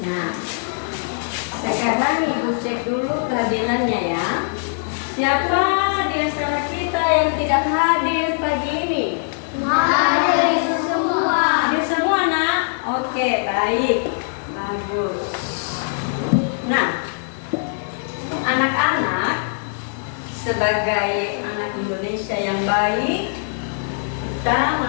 sekarang Ibu cek dulu kehadirannya ya. Siapa di antara kita yang tidak hadir pagi ini? Hadir semua. Hadir semua, Nak? Oke, baik. Bagus. Nah, anak-anak sebagai anak Indonesia yang baik, kita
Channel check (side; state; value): right; silent; digital silence